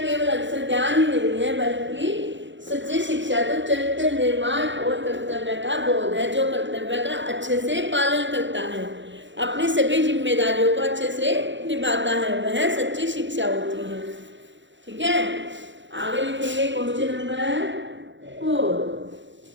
केवल अक्षर ज्ञान ही नहीं है बल्कि सच्ची शिक्षा तो चरित्र निर्माण और कर्तव्य का बोध है, जो कर्तव्य का अच्छे से पालन करता है, अपनी सभी जिम्मेदारियों को अच्छे से निभाता है, वह सच्ची शिक्षा होती है। ठीक है, आगे लिखेंगे क्वेश्चन नंबर 4।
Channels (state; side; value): late; left; 0.54 ms